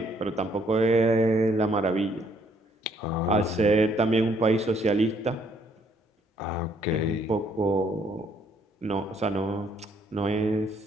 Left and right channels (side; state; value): both; normal; correlation 0.67